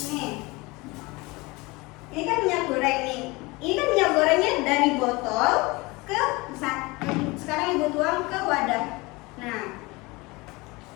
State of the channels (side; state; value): right; quieter; 23.9 dB